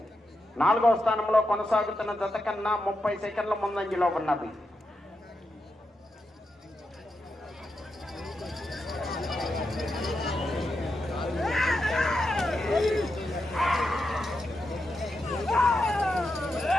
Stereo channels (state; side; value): normal; both; correlation 0.86